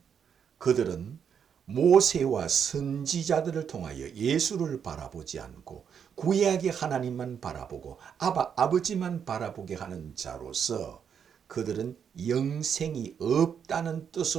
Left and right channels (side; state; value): left; quieter; 7.6 dB